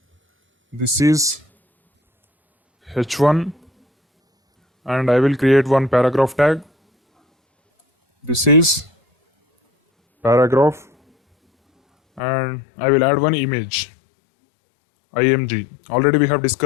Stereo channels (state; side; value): drops out; right; at 12.2 s